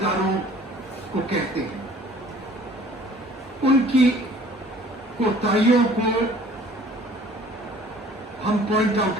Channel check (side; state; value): both; normal; correlation 0.52